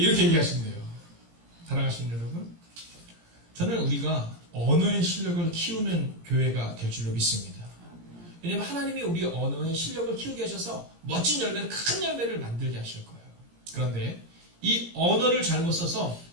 이렇게 얘기하신대요. 사랑하시는 여러분 저는 우리가 언어의 실력을 키우는 교회가 될 줄로 믿습니다. 왜냐하면 하나님이 우리 언어의 실력을 키우게 하셔서 멋진 열매를 큰 열매를 만들게 하실 거예요. 그런데 이 언어를 잘못 써서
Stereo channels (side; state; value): left; late; 17 ms